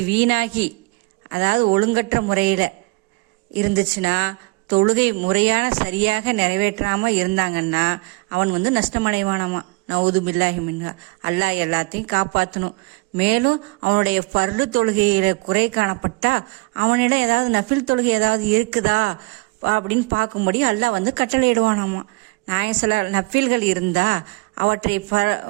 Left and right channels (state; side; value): quieter; left; 25.6 dB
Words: வீணாகி, அதாவது ஒழுங்கற்ற முறையில் இருந்துச்சுன்னா, தொழுகை முறையான சரியாக நிறைவேற்றாமல் இருந்தாங்கன்னா அவன் நஷ்டமடைவானாமா. நவுது பில்லாஹி மின்ஹா. அல்லாஹ் எல்லாத்தையும் காப்பாற்றணும். மேலும் அவனுடைய ஃபர்து தொழுகையில் குறை காணப்பட்டா அவனிடம் ஏதாவது நஃபில் தொழுகை ஏதாவது இருக்குதா அப்படின்னு பார்க்கும்படி அல்லாஹ் கட்டளையிடுவானாமா. நஃபில்கள் இருந்தால்